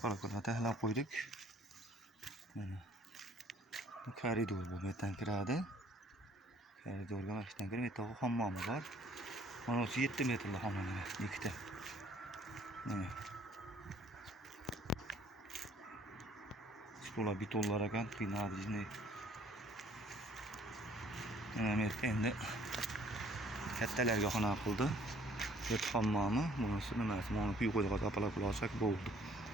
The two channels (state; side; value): normal; both; correlation 0.59